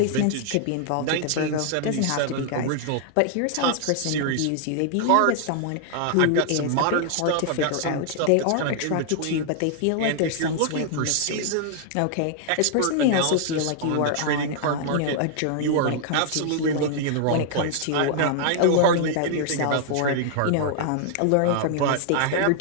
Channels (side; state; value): both; different; correlation 0.00